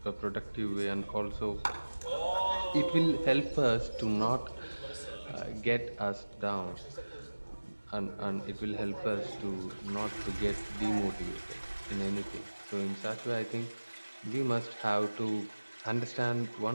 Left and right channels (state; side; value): inverted; both; correlation -1.00